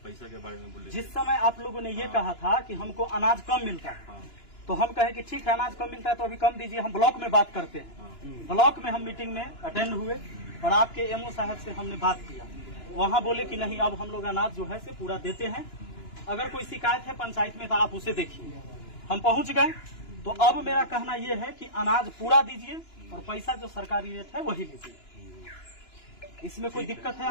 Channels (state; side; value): late; right; 2.9 ms